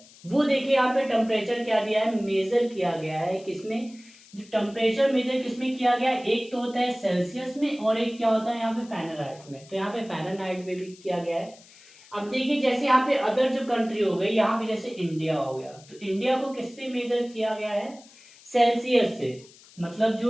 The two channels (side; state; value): left; noise; hiss, 24 dB below the sound